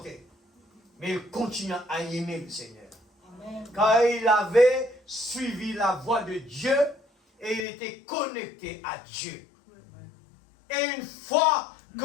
Mais il continua à aimer le Seigneur. Amen. Car il avait suivi la voie de Dieu et il était connecté à Dieu. Et une fois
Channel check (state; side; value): drops out; right; at 7.7 s